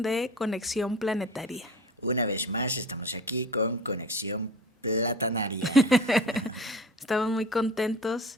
de Conexión Planetaria. Una vez más estamos aquí con Conexión Platanaria. Estamos muy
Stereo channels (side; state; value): both; normal; correlation 0.37